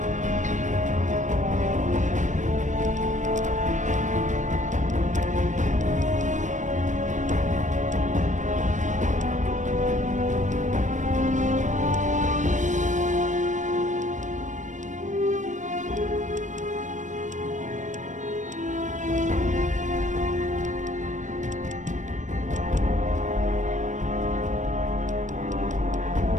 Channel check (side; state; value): left; late; 0.35 ms